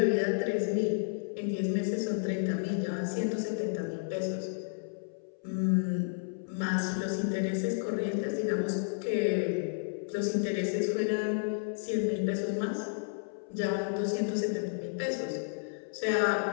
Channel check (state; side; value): silent; right; 57 dB below the other